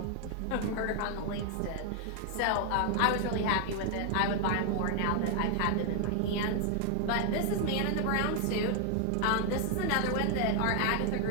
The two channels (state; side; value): different; both; correlation 0.00